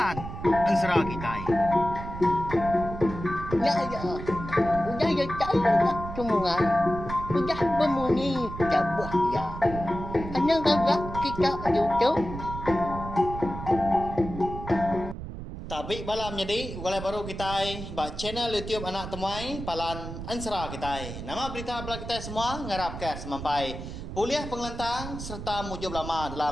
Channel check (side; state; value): right; noise; rumble, 9 dB below the sound